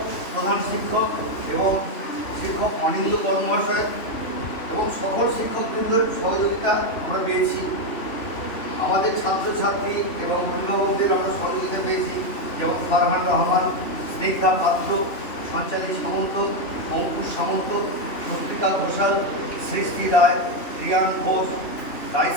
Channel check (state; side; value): late; right; 3.1 ms